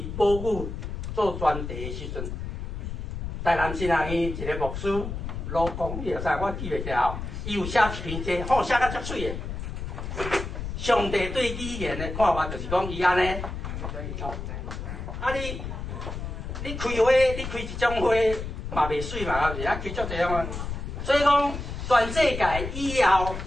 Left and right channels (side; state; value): left; noise; rumble, 6 dB below the sound